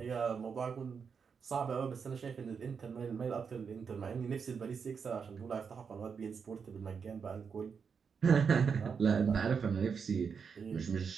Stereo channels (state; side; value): quieter; left; 6.1 dB